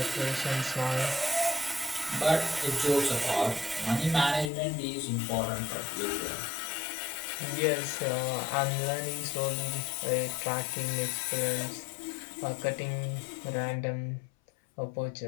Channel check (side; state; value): right; drops out; at 4.5 s